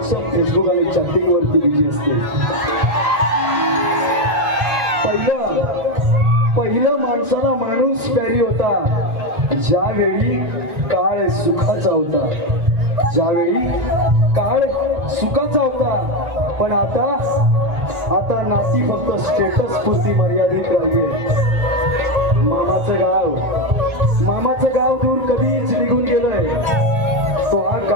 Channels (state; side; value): late; left; 1.4 ms